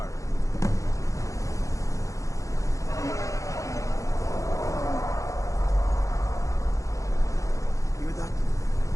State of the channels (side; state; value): right; late; 0.15 ms